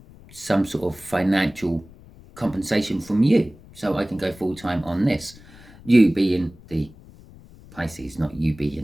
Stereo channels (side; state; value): left; noise; rumble, 22 dB below the sound